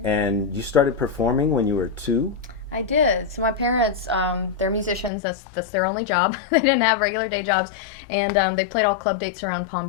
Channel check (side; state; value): right; drops out; at 5.1 s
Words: And you started performing when you were 2? I did. So my parents, they're musicians. That's their only job. They didn't have regular day jobs, and they played all club dates around Palm